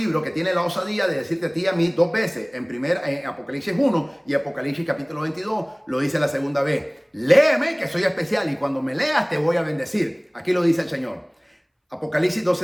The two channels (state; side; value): identical; both; correlation 1.00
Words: que tiene la osadía de decirte a ti y a mí 2 veces, en Apocalipsis 1 y Apocalipsis capítulo 22, lo dice la segunda vez. Léeme que soy especial y cuando me leas te voy a bendecir. Aquí lo dice el Señor. Apocalipsis